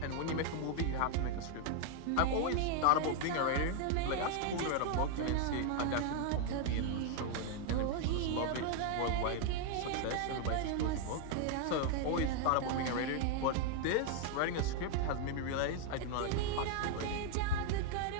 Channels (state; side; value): different; both; correlation 0.00